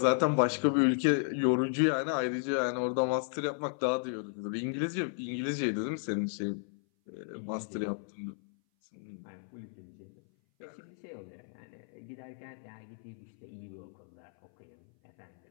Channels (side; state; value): right; silent; 55 dB below the other